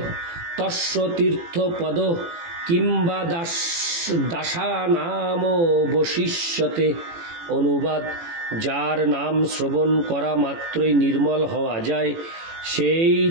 তস্য তীর্থপদ কিংবা দাসানাম বশিষ্যতে। অনুবাদ: যার নাম শ্রবণ করা মাত্রই নির্মল হওয়া যায়, সেই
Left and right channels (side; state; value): left; late; 18 ms